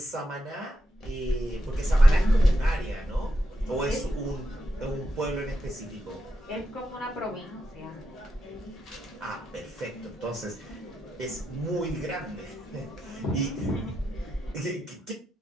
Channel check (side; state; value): both; normal; correlation 0.85